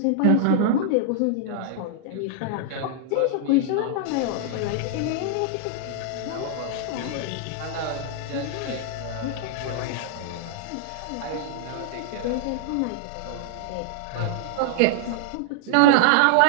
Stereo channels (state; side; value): different; both; correlation -0.01